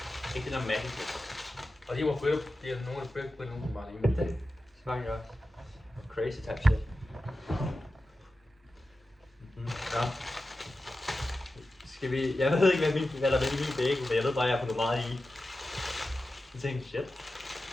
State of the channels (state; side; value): normal; both; correlation 0.93